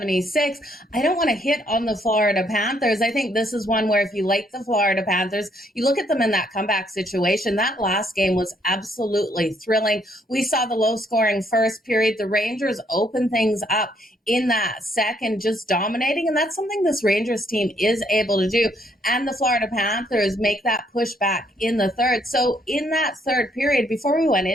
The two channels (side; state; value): both; normal; correlation 0.70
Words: I don't want to hit on the Florida Panthers. I think this is one where if you like the Florida Panthers, you look at them in that comeback situation. That last game was absolutely thrilling. We saw the low-scoring first period. The Rangers open things up in that second, just dominating. And that's something this Rangers team is able to do. And the Florida Panthers make that pushback in the third. So in that third period, before we went